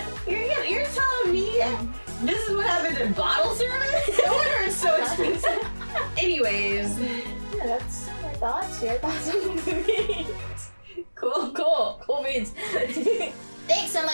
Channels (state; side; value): inverted; both; correlation -1.00